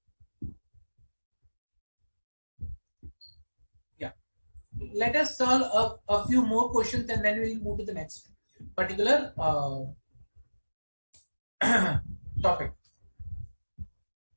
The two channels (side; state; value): both; inverted; correlation -1.00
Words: Yeah. Let us solve a few more questions and then we'll move to the next particular topic.